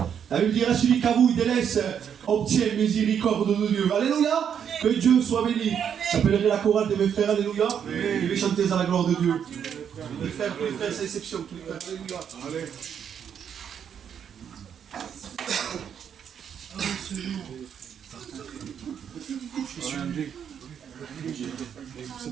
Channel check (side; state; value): left; quieter; 8.2 dB